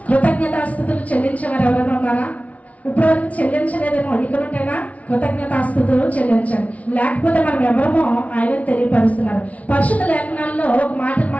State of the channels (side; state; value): right; late; 0.067 ms